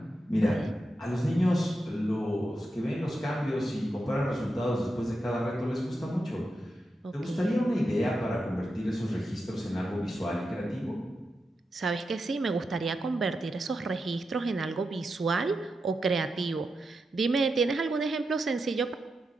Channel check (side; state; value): both; normal; correlation 0.88